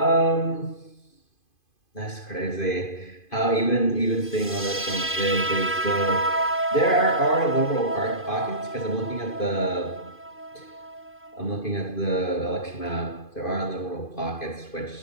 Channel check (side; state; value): right; late; 2.5 ms